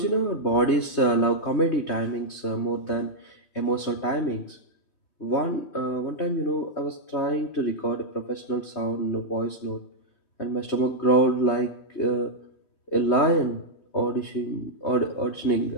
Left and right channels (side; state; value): right; late; 3.2 ms